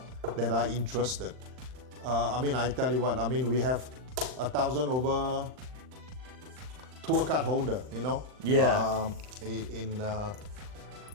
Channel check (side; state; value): left; late; 39 ms